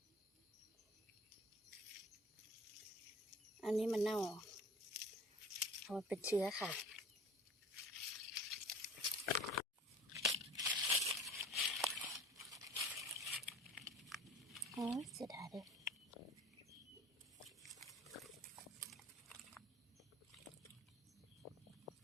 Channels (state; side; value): normal; both; correlation 0.43